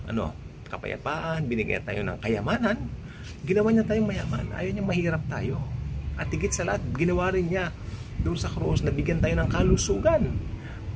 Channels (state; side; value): identical; both; correlation 1.00